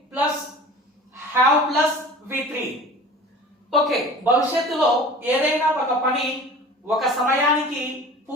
plus have plus V3 okay, భవిష్యత్తులో ఏదైనా ఒక పని ఒక సమయానికి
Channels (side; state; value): both; normal; correlation 0.41